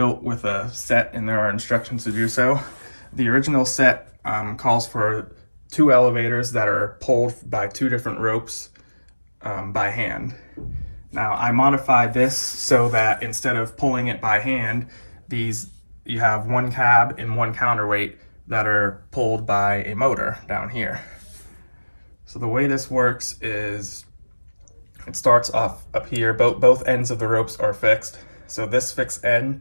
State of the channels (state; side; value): inverted; both; correlation -1.00